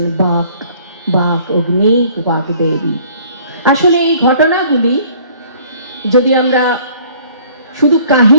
বাক, বাক অগ্নি, বাক দেবী। আসলে এই ঘটনাগুলি যদি আমরা শুধু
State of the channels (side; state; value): both; inverted; correlation -0.55